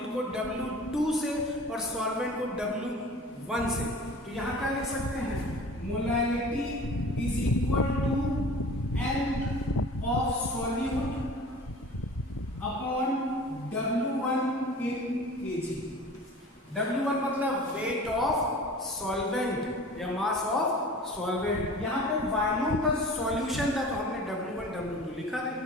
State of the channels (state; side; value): normal; both; correlation 0.42